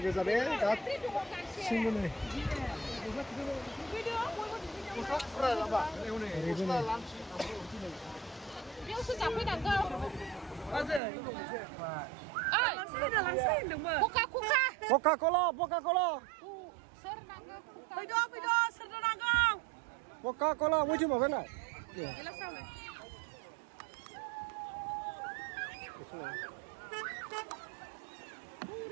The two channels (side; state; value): left; drops out; at 11.0 s